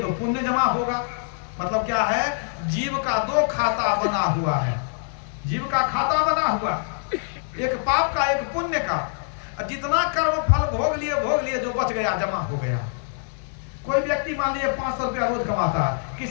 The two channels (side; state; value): right; silent; 62 dB below the other